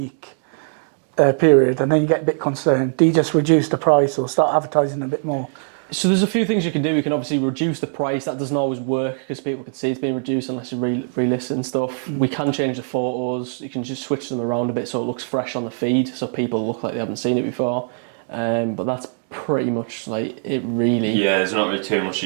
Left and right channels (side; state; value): left; silent; digital silence